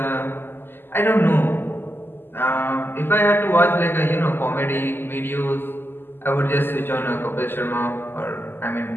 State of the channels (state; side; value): late; right; 0.10 ms